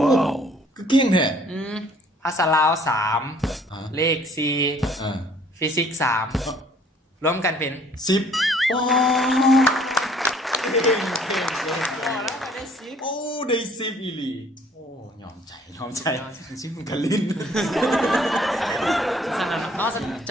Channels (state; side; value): normal; both; correlation 0.58